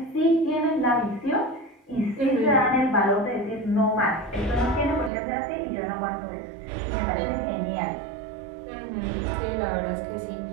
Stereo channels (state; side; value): drops out; left; at 5.1 s